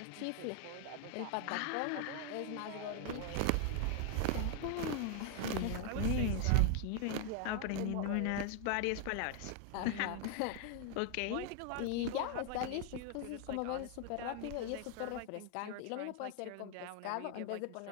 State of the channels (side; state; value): both; different; correlation 0.00